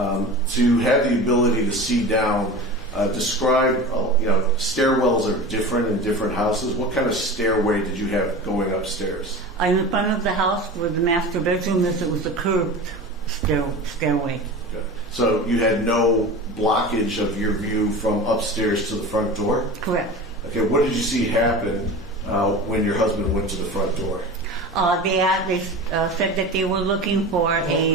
have the ability to see down, describe, stairwells are different in different houses. What kind of stairway did you have going upstairs? In the front of the house where the master bedroom is, it was a curved stairway. Okay. So you had no blockage of your view from upstairs to the front door? Correct. Okay, what did you see happen when your husband went to the front door? They said that they were looking for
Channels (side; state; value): both; normal; correlation 0.32